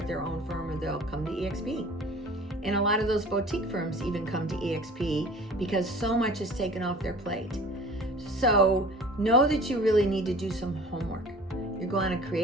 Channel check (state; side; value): normal; both; correlation 0.44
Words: their own firm, or they'll come to EXP. And a lot of those boutique firms even come to EXP because so much is taken off their plate. So know that you really need to do some homework. You're going to